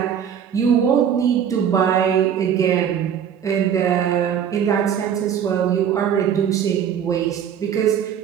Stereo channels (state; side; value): quieter; left; 8.6 dB